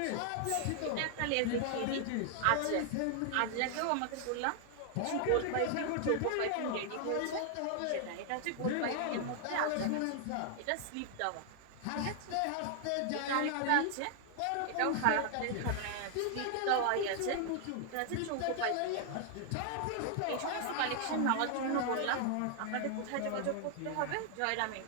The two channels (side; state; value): both; different; correlation 0.00